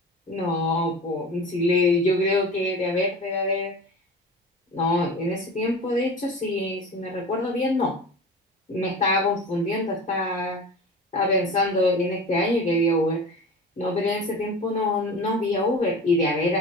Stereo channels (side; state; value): both; normal; correlation 0.34